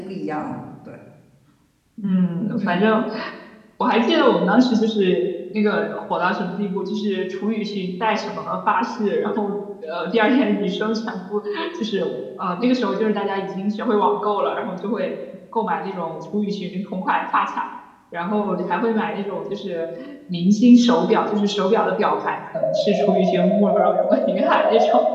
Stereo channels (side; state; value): both; identical; correlation 1.00